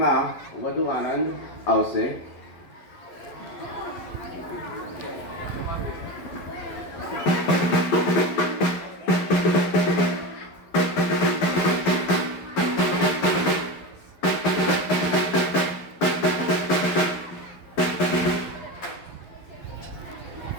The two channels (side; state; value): right; late; 11 ms